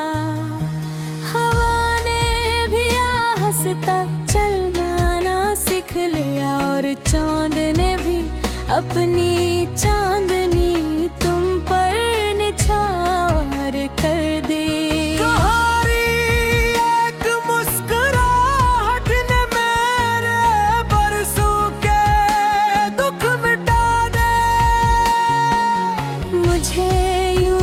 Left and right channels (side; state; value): both; identical; correlation 1.00